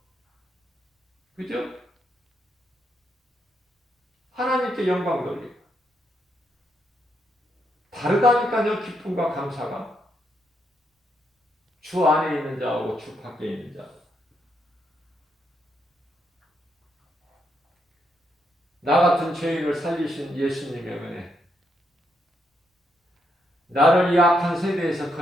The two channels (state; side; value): normal; both; correlation 0.78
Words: 그죠? 하나님께 영광 돌리고. 다르다니까요. 기쁨과 감사가. 주 안에 있는 자하고 주 밖에 있는 자. 나 같은 죄인을 살리신 예수님의 은혜. 나를 이 악한 세대에서